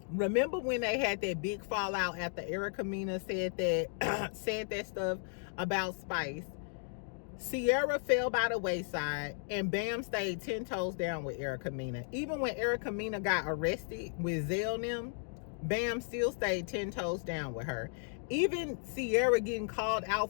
Remember when they had that big fallout after Erica Mena said that stuff about Spice? Sierra fell by the wayside and BAM stayed 10 toes down with Erica Mena. Even when Erica Mena got arrested with Zell and them, BAM still stayed 10 toes down with her. Even Sierra getting called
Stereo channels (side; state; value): right; silent; 54 dB below the other